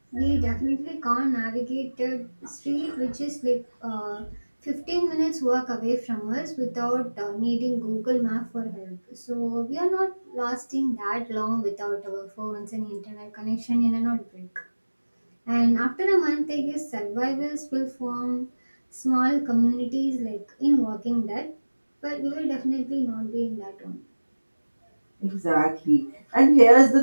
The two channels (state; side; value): inverted; both; correlation -1.00